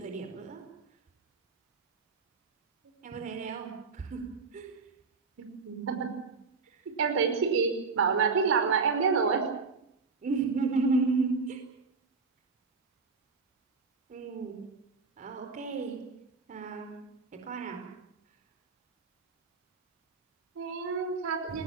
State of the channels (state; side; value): quieter; left; 4.7 dB